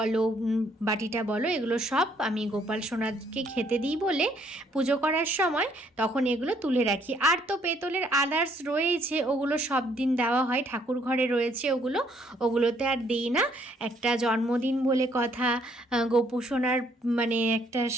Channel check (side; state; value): both; normal; correlation 0.67